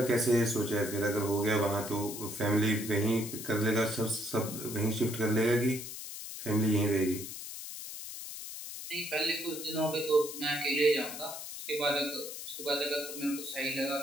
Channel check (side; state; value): left; noise; hiss, 9 dB below the sound